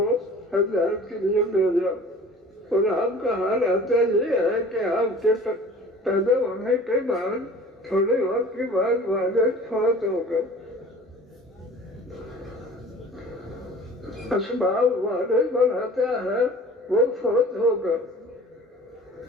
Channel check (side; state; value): both; normal; correlation 0.45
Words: ہدایت کے لیے بھیجا، اور آپ کا حال آتا یہ ہے کہ آپ کے پیدا ہونے کے بعد تھوڑے وقت کے بعد والد فوت ہو گئے۔ اسباب والد بناتا ہے وہ فوت ہوگا،